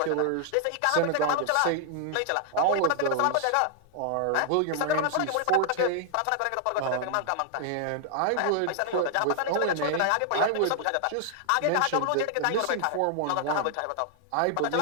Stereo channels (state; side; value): different; both; correlation -0.01